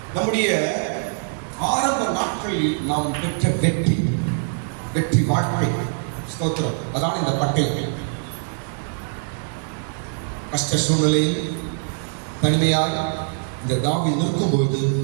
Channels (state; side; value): silent; left; digital silence